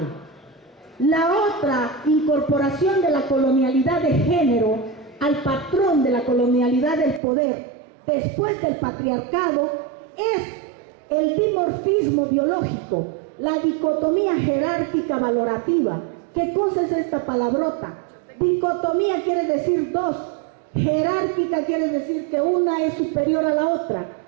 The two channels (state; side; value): drops out; left; at 7.2 s